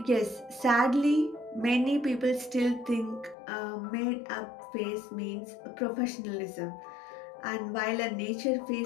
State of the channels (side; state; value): right; drops out; at 3.4 s